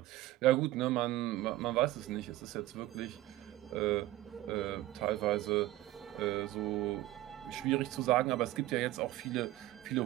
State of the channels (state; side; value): quieter; left; 16.1 dB